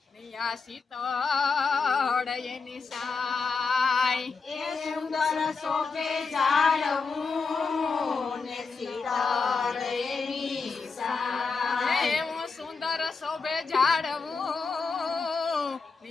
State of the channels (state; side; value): quieter; right; 4.8 dB